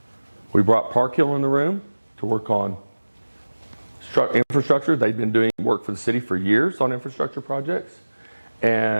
We brought Park Hill in the room to work on infrastructure. They'd been doing work for the city for years on infrastructure projects.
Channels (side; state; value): both; inverted; correlation -1.00